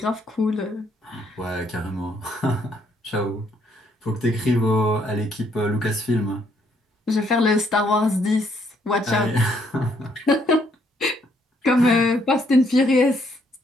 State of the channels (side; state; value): both; normal; correlation 0.70